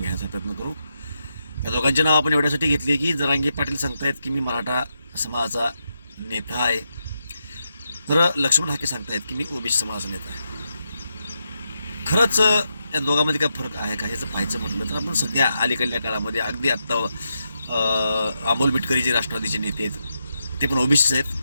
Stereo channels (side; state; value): both; inverted; correlation -0.84